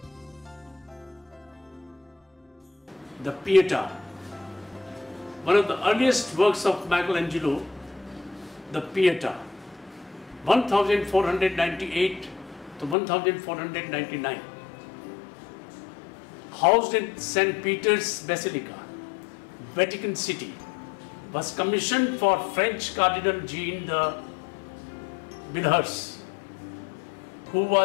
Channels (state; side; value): drops out; right; at 13.0 s